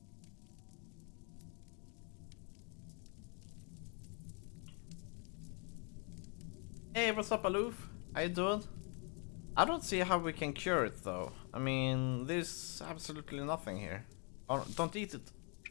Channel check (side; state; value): right; quieter; 37.0 dB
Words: Hey, what's up, Aloof? How you doing? I don't see how we can cure it, though. I mean, there's absolutely nothing here. Oh, don't eat it.